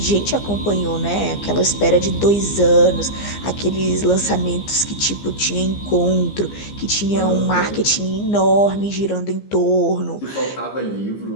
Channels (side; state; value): right; late; 15 ms